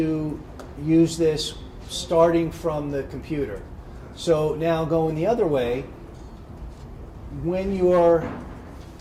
use this starting from the computer. So now going the other way, when you're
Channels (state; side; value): identical; both; correlation 1.00